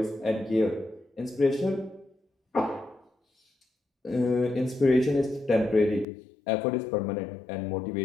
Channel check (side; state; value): right; drops out; at 6.1 s